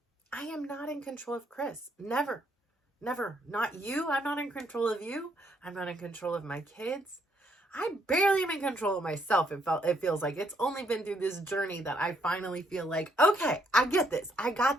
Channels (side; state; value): both; normal; correlation 0.72